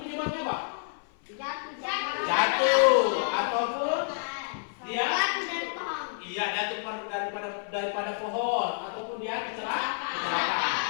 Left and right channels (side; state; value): right; silent; 57 dB below the other